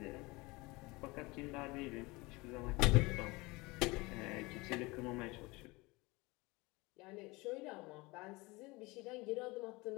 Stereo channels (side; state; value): right; quieter; 23.7 dB